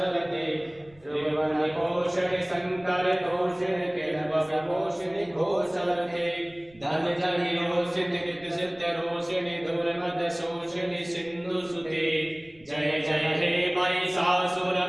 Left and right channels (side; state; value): right; noise; rumble, 28 dB below the sound